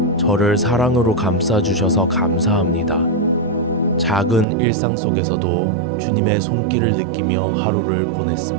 저를 사랑으로 감싸주셔서 감사합니다. 작은 일상 속에서도 주님의 손길을 느끼며 하루를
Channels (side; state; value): left; drops out; at 4.5 s